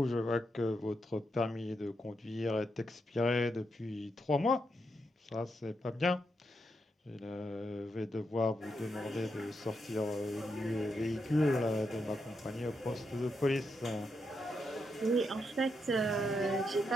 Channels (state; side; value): normal; both; correlation 0.82